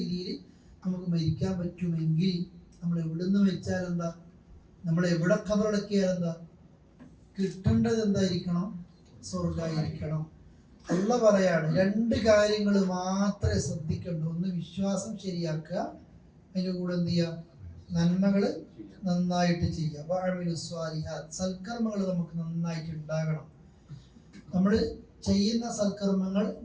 നമുക്ക് മരിക്കാൻ പറ്റുമെങ്കിൽ നമ്മൾ എവിടുന്ന് വെച്ചാൽ എന്താ, നമ്മൾ എവിടെ ഖബറടക്കിയാൽ എന്താ, കിട്ടേണ്ടത് എന്തായിരിക്കണം? സ്വർഗ്ഗമായിരിക്കണം. അള്ള പറയാണ് രണ്ട് കാര്യങ്ങൾ മാത്രമേ ശ്രദ്ധിക്കണ്ടൂ. ഒന്ന് വിശ്വാസം ശരിയാക്കുക, അതിൻ്റെ കൂടെ എന്ത് ചെയ്യുക? നന്മകൾ നന്നായിട്ട് ചെയ്യുക. സൽക്കർമ്മങ്ങൾ നമുക്ക് നന്നായിട്ട് ഉണ്ടാകണം. നമ്മൾ ചെയ്യുന്ന സൽക്കർമ്മങ്ങൾ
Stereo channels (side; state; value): both; identical; correlation 1.00